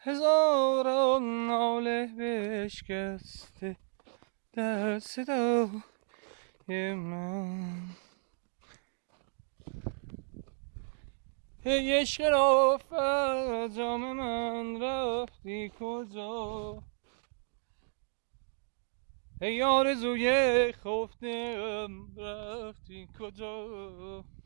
ناله بشکسته در صدای من. ای عشق رافت جام من رفتی کجا، ای آرزوی خفتم رفتی کجا،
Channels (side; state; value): left; silent; 56 dB below the other